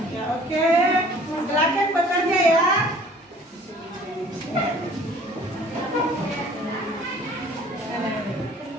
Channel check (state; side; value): normal; both; correlation 0.52